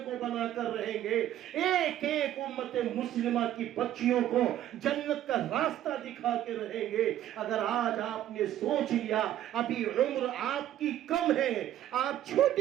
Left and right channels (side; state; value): left; quieter; 12.2 dB